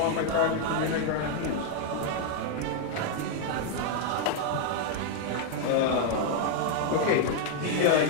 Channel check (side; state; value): both; different; correlation 0.00